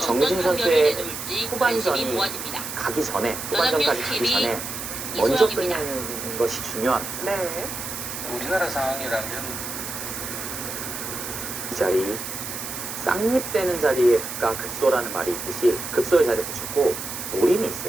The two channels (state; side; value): noise; right; hiss, 7 dB below the sound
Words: 정민준 어떤 판결을 선수의 내놓을지 관심이 후반전이 모아집니다. 가기 전에 후반전까지 가기 연합뉴스 전에 먼저 이소영입니다. 끝내는 것이 중요합니다. 네. 우리나라 상황이라면 이 자리 쌍립되는 자리가 급소라는 말이 있듯이 급소의 자리에 붙였고 노림이